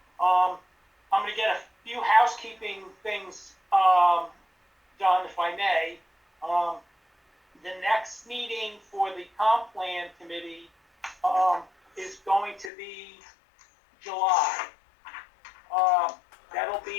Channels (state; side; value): drops out; right; at 12.7 s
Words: I'm going to get a few housekeeping things done, if I may. The next meeting for the comp plan committee is going to be July. That'll